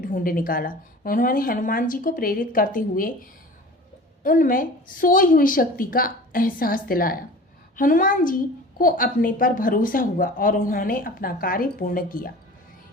निकाला। उन्होंने हनुमान जी को प्रेरित करते हुए उनमें सोई हुई शक्ति का एहसास दिलाया। हनुमान जी को अपने पर भरोसा हुआ और उन्होंने अपना कार्य पूर्ण किया।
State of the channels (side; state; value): both; normal; correlation 0.40